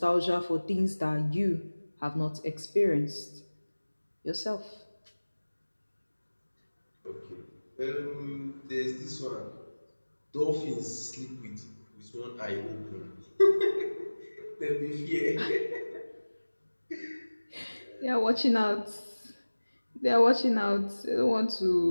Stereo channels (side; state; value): both; inverted; correlation -1.00